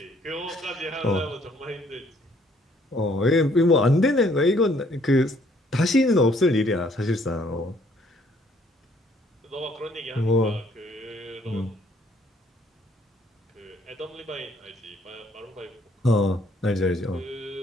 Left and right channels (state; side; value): normal; both; correlation 0.64